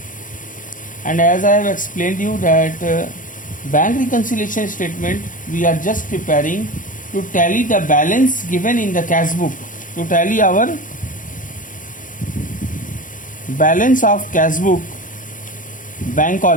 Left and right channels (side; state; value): right; late; 0.38 ms